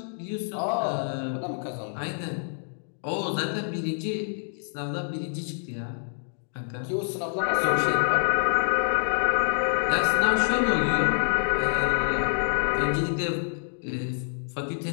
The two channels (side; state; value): right; silent; digital silence